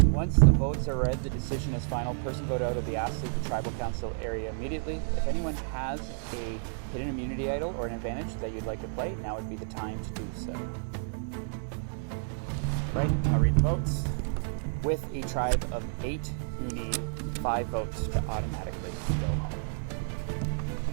Once the votes are read, the decision is final. Person voted out will be asked to leave the tribal council area immediately. If anyone has a hidden immunity idol or an advantage that you'd like to play, now would be the time to do so. Right, I'll read the votes. With a tribe of 8, you need 5 votes to automatically go home.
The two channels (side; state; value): left; silent; digital silence